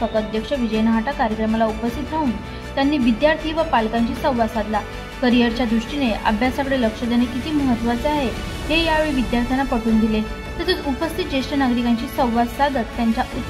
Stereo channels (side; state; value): both; identical; correlation 1.00